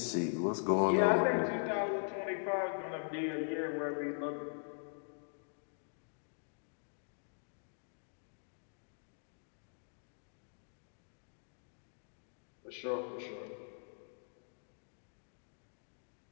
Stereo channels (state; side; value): silent; right; digital silence